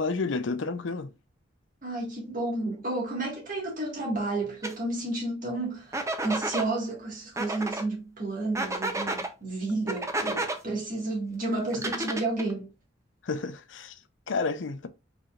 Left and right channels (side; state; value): both; normal; correlation 0.40